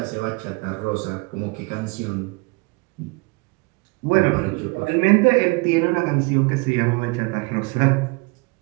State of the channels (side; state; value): left; quieter; 28.5 dB